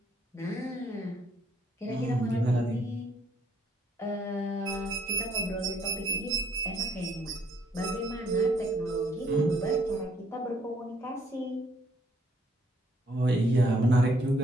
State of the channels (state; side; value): normal; both; correlation 0.67